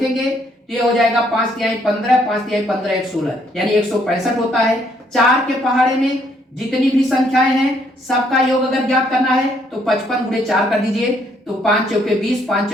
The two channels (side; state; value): both; normal; correlation 0.69